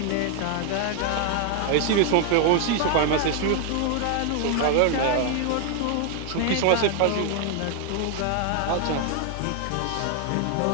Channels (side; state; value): both; different; correlation 0.00